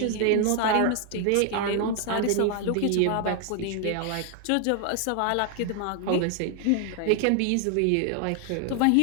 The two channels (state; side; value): different; both; correlation 0.00